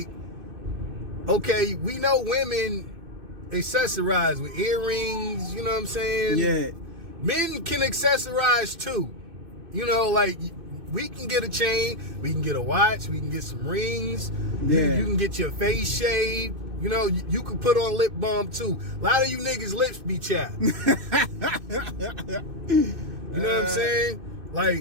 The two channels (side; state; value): left; late; 2.6 ms